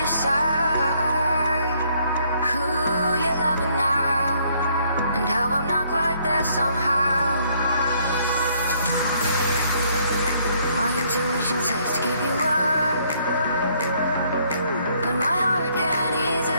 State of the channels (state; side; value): inverted; both; correlation -0.67